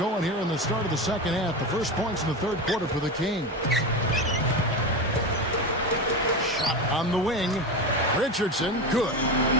here in the start of the second half. The first points in the third quarter for the Kings. Shot on the wing. Richardson, good.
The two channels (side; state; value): both; normal; correlation 0.21